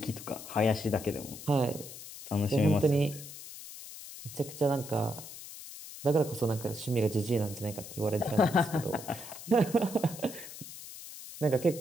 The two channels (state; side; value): noise; left; hiss, 13 dB below the sound